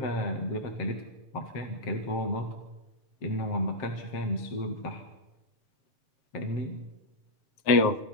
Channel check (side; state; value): right; late; 7.5 ms